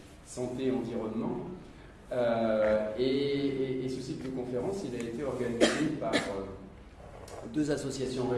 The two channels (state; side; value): identical; both; correlation 1.00